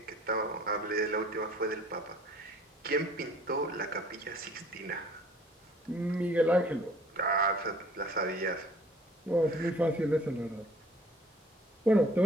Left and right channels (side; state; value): both; normal; correlation 0.54